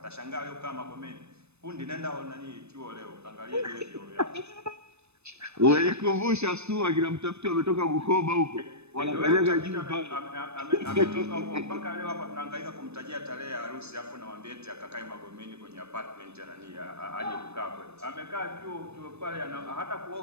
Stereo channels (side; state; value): left; late; 0.81 ms